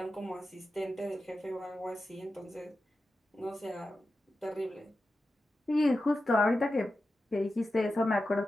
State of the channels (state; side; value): normal; both; correlation 0.92